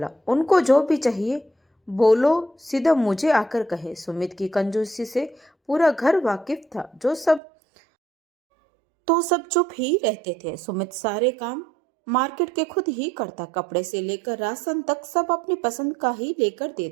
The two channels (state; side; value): drops out; left; at 7.4 s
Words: उनको जो भी चाहिए बोलो, सीधा मुझे आकर कहे। सुमित की कंजूसी से पूरा घर वाकिफ था, सब चुप ही रहते थे। सुमित सारे काम मार्केट के खुद ही करता, कपड़े से लेकर राशन तक सब अपनी पसंद का ही लेकर